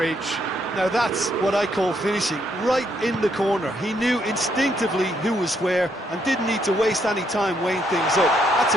Now that's what I call finishing, right in the corner. He knew instinctively who was where and didn't need to waste any time weighing things up. That's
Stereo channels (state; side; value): normal; both; correlation 0.74